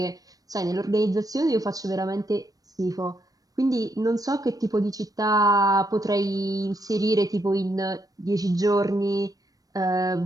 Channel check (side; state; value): left; late; 0.18 ms